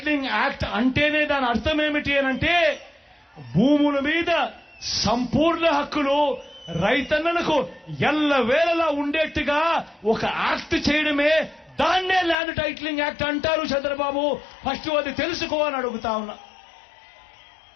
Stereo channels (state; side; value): drops out; right; at 12.4 s